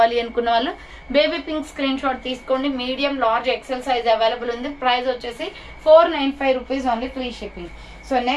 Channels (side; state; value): both; identical; correlation 1.00